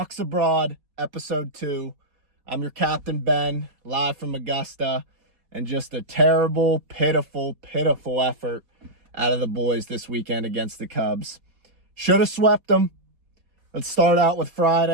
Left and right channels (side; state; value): left; late; 4.1 ms